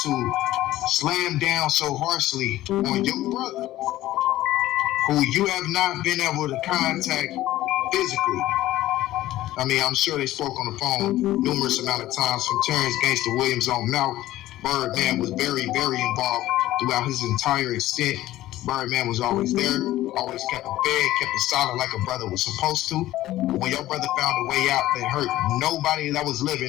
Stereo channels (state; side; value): quieter; right; 15.2 dB